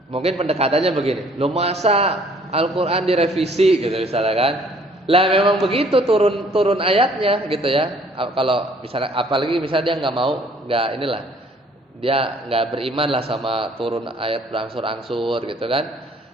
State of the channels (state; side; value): normal; both; correlation 0.59